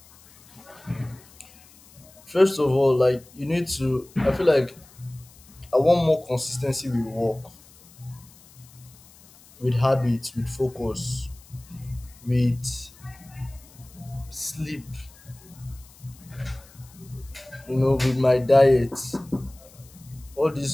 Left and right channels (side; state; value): left; noise; hiss, 25 dB below the sound